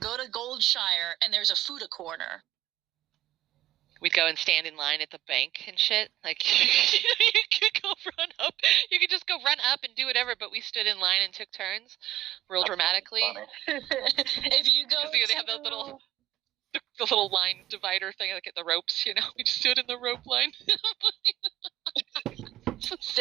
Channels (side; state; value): left; quieter; 14.2 dB